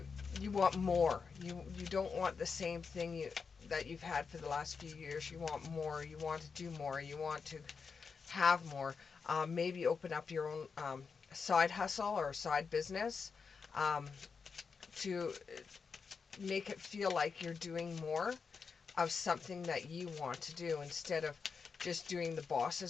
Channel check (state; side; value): quieter; right; 5.4 dB